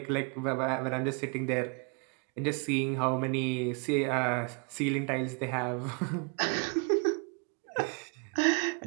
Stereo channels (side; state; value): left; quieter; 34.6 dB